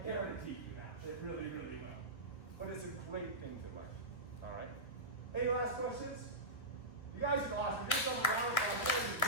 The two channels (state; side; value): late; right; 1.3 ms